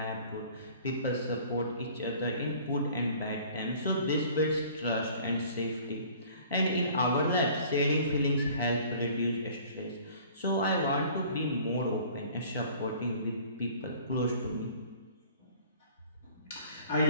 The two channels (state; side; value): inverted; both; correlation -0.50